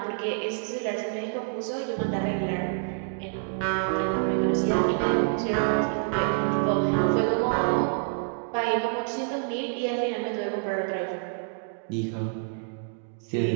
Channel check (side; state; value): left; silent; 60 dB below the other